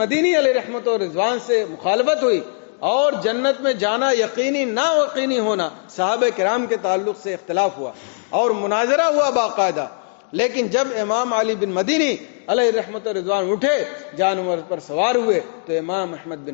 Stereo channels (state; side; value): silent; right; digital silence